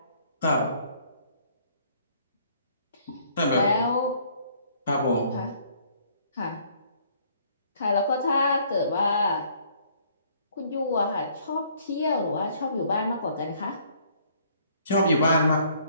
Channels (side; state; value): both; inverted; correlation -0.62